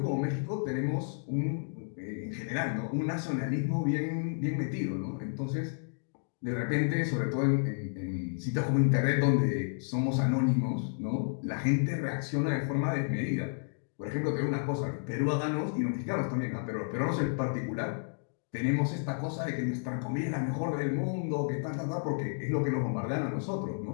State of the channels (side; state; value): right; silent; digital silence